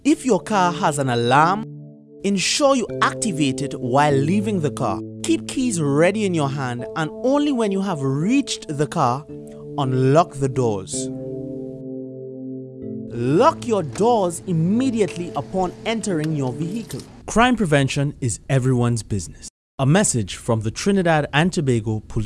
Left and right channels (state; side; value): identical; both; correlation 1.00